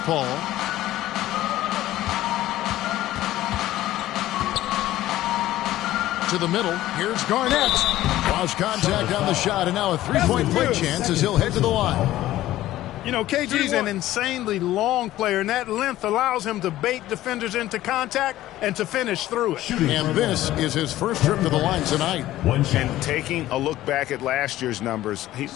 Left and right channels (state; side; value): quieter; right; 14.8 dB